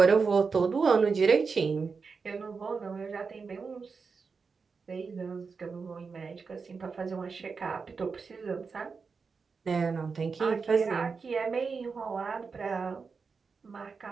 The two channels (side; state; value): left; quieter; 5.0 dB